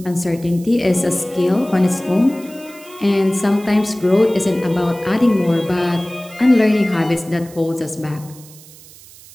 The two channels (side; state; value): right; noise; hiss, 21 dB below the sound